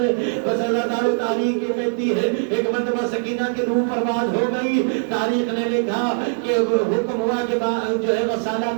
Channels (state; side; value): silent; left; digital silence